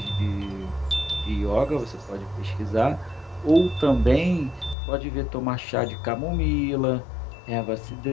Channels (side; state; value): right; drops out; at 4.8 s